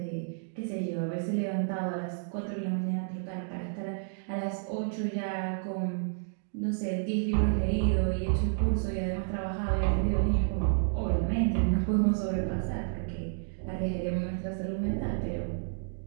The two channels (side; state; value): left; silent; digital silence